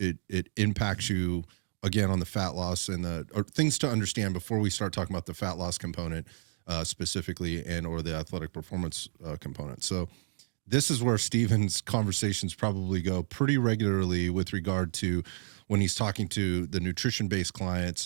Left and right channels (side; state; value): left; silent; digital silence